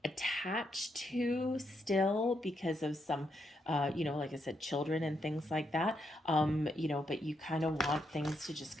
attached to still because of some, like I said, children and things like that, but you kind of want things to just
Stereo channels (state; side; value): normal; both; correlation 0.79